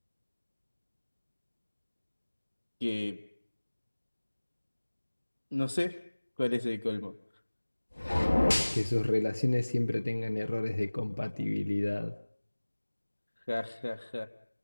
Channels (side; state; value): both; inverted; correlation -1.00